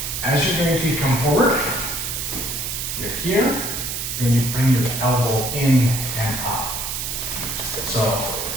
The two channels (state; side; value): noise; right; hiss, 3 dB below the sound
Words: As you're going to come forward, you're here, and you bring your elbow in and up. So